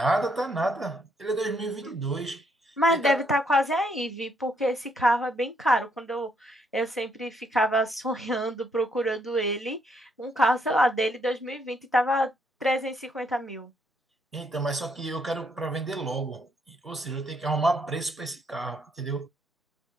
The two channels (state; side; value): normal; both; correlation 0.72